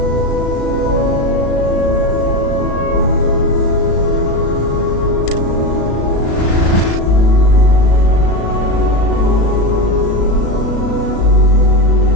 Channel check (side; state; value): right; late; 36 ms